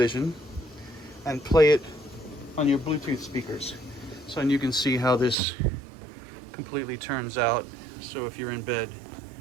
and play it on your Bluetooth speakers. So, and you can see how this completely turns out. So if you're in bed,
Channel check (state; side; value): drops out; left; at 5.4 s